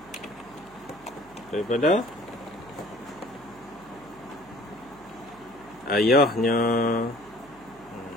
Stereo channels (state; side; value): noise; right; hum, 24 dB below the sound